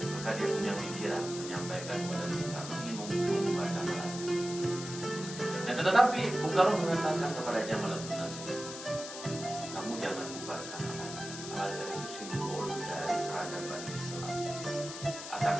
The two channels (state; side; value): noise; left; hiss, 9 dB below the sound